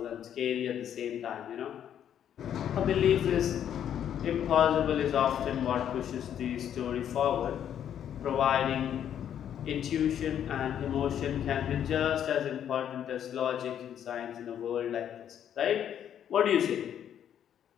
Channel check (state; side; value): quieter; right; 9.7 dB